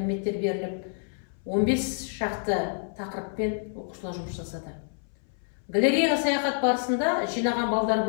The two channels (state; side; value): silent; right; 59 dB below the other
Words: беріліп, 15 шақты тақырыппен оқушылар жұмыс жасады. Галереяға саяхат барысында жинаған балдар